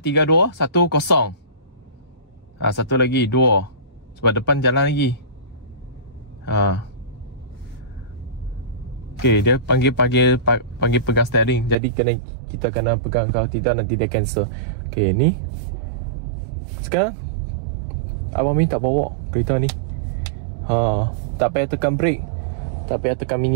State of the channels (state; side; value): drops out; left; at 11.8 s